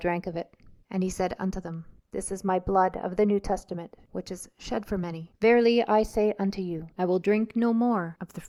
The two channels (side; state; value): both; identical; correlation 1.00